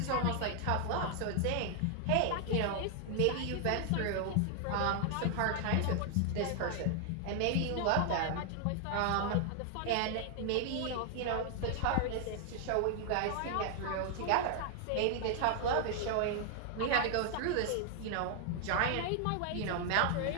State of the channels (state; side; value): different; both; correlation 0.00